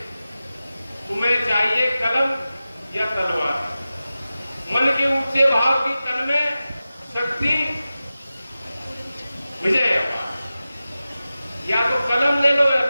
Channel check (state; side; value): inverted; both; correlation -0.95